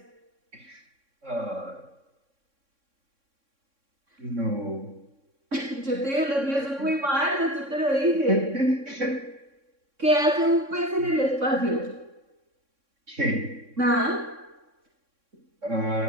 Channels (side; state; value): left; late; 3.6 ms